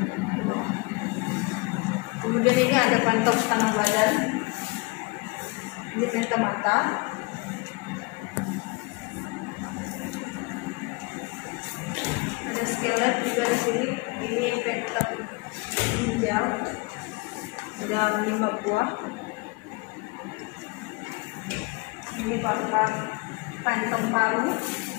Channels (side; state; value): right; quieter; 27.8 dB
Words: Kemudian ini ada pantau setengah badan. Ini penta mata. Skelet juga di sini. Ini penta ginjal, ada 5 buah. Ini paru-paru, kantong paru,